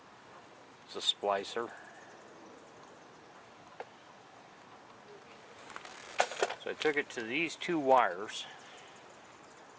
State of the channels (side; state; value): both; identical; correlation 1.00